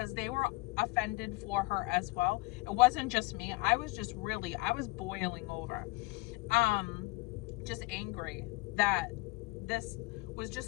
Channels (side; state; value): right; quieter; 22.6 dB